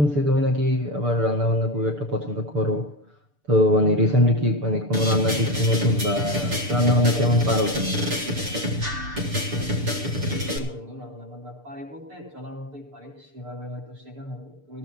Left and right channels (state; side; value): late; left; 6.8 ms